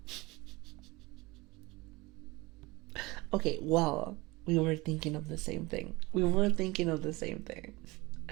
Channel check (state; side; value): quieter; left; 22.8 dB